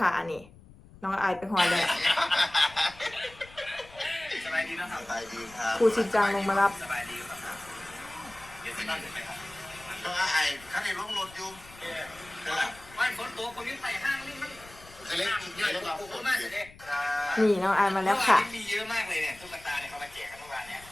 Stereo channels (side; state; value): left; noise; rumble, 22 dB below the sound